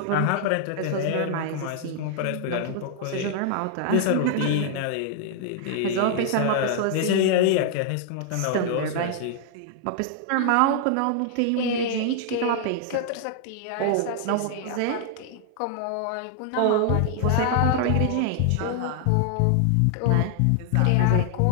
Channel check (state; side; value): different; both; correlation 0.00